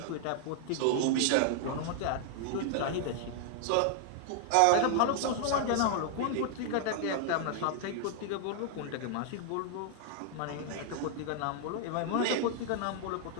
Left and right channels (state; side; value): different; both; correlation 0.00